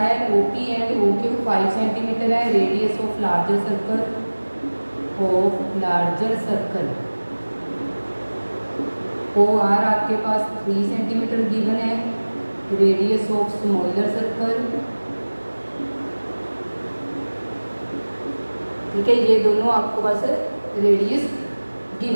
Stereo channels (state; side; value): inverted; both; correlation -1.00